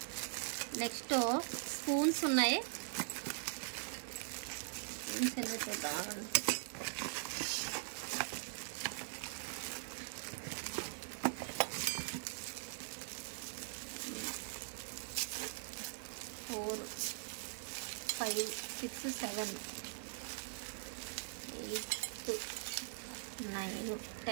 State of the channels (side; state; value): left; silent; digital silence